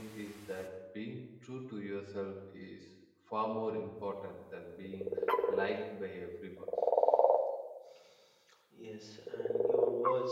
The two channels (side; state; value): both; identical; correlation 1.00